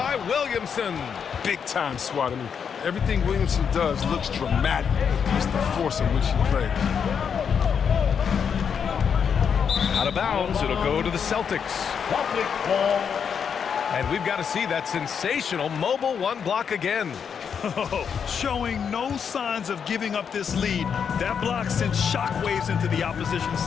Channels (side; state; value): right; quieter; 7.0 dB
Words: Williamson. Big time swat. I mean, everything Williamson does looks dramatic. It's the force in which he plays. Out of bounds, it'll go to the Celtics. And we've got to see that sensational mobile 1 block again. Showing no signs of giving up this lead. That block sent shockwaves into the opposition